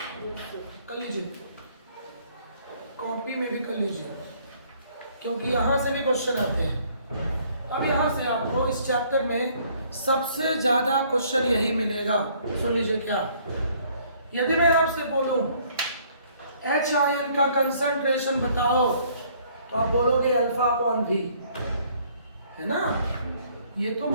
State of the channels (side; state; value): both; inverted; correlation -0.61